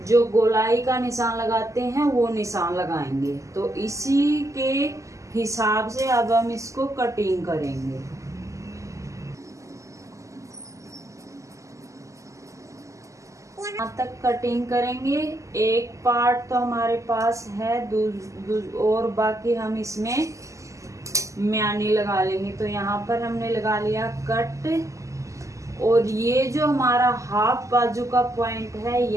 जो गोलाई का निशान लगाते हैं वो निशान लगाएंगे। तो इसी के हिसाब से अब हम इसको कटिंग करेंगे। यहाँ तक कटिंग करेंगे। एक पार्ट तो हमारे पास है और बाकी हम इसमें म्यानी लगा लेंगे। तो यहाँ पर हमने लगा लिया कट और ये जो हमारा हाफ बाजू का पॉइंट है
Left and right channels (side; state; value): left; late; 0.16 ms